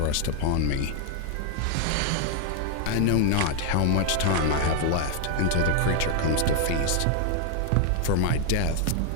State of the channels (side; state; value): both; different; correlation 0.00